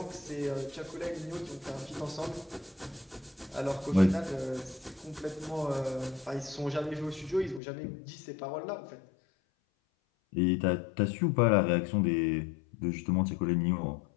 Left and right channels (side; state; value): right; drops out; at 7.6 s